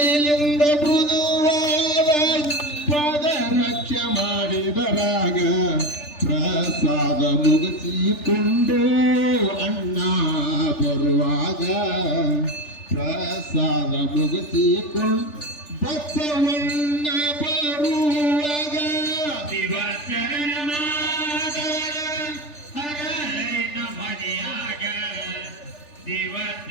ಮೃದುವಾದ ಪಾದರಕ್ಷ ಮಾಡಿದ ರಾಗ ಪ್ರಸಾದ ಮುಗಿಸಿಕೊಂಡು ಅಣ್ಣ ಬರುವಾಗ ಪ್ರಸಾದ ಮುಗಿಸಿಕೊಂಡು ಬಸವಣ್ಣ ಬರುವಾಗ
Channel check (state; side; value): late; right; 3.4 ms